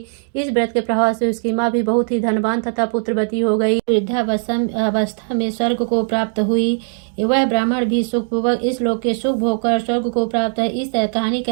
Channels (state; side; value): silent; left; digital silence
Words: इस व्रत के प्रभाव से उसकी माँ भी बहुत ही धनवान तथा पुत्रवती हो गई। वृद्धावस्था में स्वर्ग को प्राप्त हुई। वह ब्राह्मण भी सुखपूर्वक इस लोक के सुख भोग कर स्वर्ग को प्राप्त है। इस कहानी